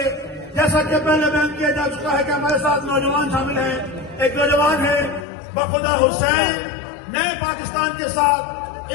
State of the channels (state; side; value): drops out; right; at 5.2 s